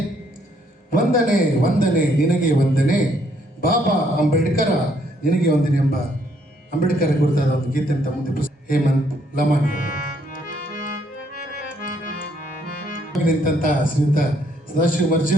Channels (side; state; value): both; normal; correlation 0.69